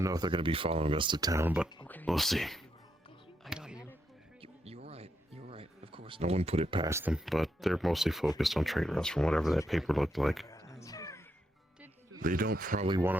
know if they're going to be following us to town, but we'll see. I got you. You're right. You're right. Of course. No one put it past them, but they're mostly focused on trade routes from whatever that paper looked like. They don't probably want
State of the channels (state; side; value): normal; both; correlation 0.80